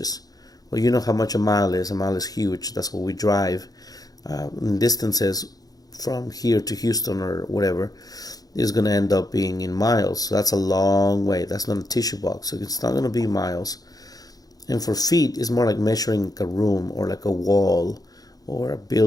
Well, you know how much a mile is. A mile is huge. That's what we drive. Distances from here to Houston or whatever is going to end up being in miles. So that's a long way. That's not a tissue box. So it's not going to be miles. And for feet, it's more like measuring a room or like a wall or a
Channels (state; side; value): late; right; 0.18 ms